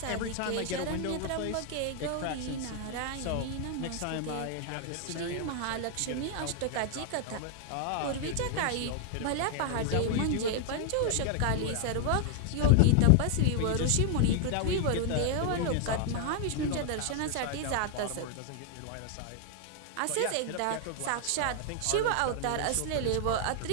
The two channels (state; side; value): different; both; correlation 0.00